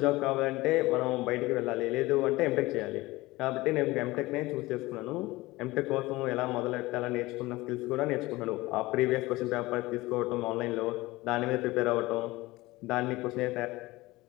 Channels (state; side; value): quieter; right; 20.1 dB